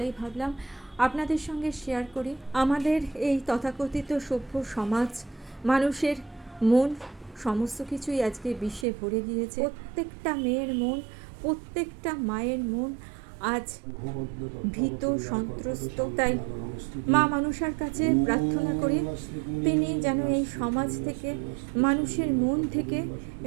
ভাবলাম আপনাদের সঙ্গে শেয়ার করি। আমাদের এই তথাকথিত সভ্য সমাজ, মানুষের মন সমস্ত কিছুই আজকে বিষে ভরে গিয়েছে। প্রত্যেকটা মেয়ের মন, প্রত্যেকটা মায়ের মন আজ ভীত, সন্ত্রস্ত। তাই মা মনসার কাছে প্রার্থনা করি, তিনি যেন এই সমাজ থেকে, মানুষের মন থেকে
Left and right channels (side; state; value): left; drops out; at 8.8 s